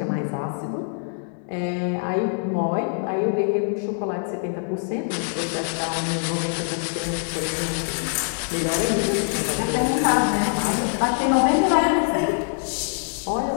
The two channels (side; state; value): right; silent; 63 dB below the other